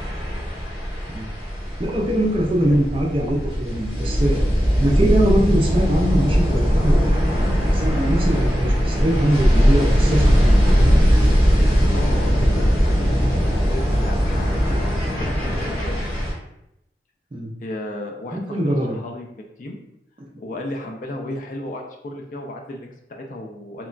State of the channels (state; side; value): normal; both; correlation 0.92